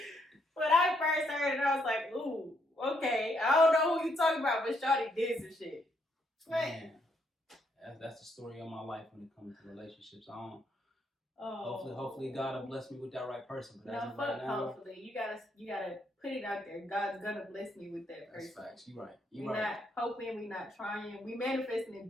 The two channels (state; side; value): normal; both; correlation 0.74